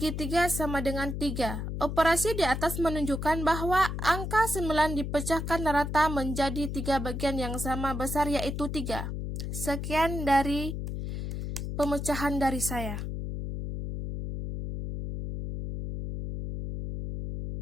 3 sama dengan 3. Operasi di atas menunjukkan bahwa angka 9 dipecahkan rata menjadi 3 bagian yang sama besar, yaitu 3. Sekian dari pemecahan dari saya.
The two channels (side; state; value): left; noise; hum, 4 dB below the sound